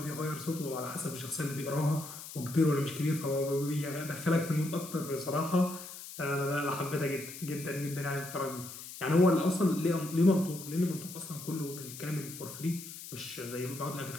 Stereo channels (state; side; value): noise; left; hiss, 12 dB below the sound